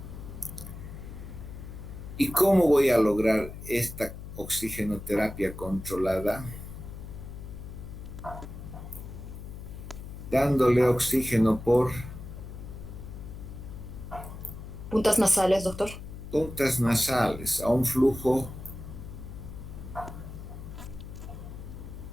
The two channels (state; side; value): noise; left; hum, 11 dB below the sound